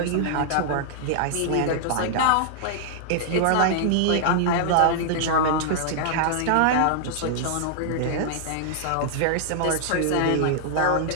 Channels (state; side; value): different; both; correlation -0.01